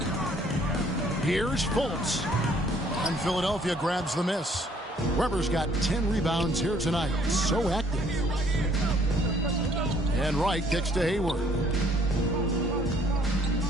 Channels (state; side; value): normal; both; correlation 0.61